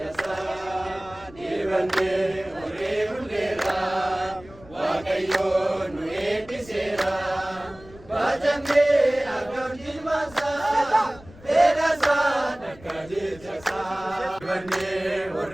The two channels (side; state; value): left; noise; rumble, 21 dB below the sound